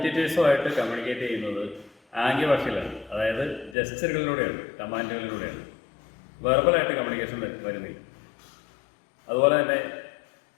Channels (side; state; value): right; drops out; at 3.8 s